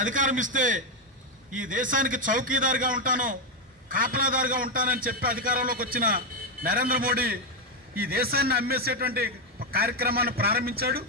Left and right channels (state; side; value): normal; both; correlation 0.05